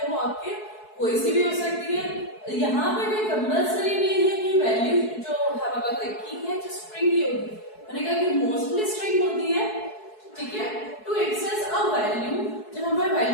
वो आपके कोई सी भी हो सकती है। यहाँ पे कोई कंपल्सरी नहीं है कि वैल्यू जो हमारे पास की है जो स्ट्रिंग ही होगी, मैंने कहा कि मोस्टली स्ट्रिंग होती है। ठीक है, टू एक्सेस अ वैल्यू, जब हमें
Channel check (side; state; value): right; late; 4.7 ms